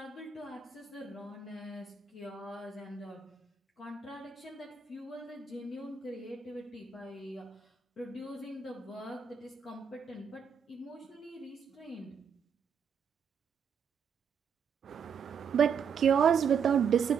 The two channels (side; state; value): left; quieter; 6.7 dB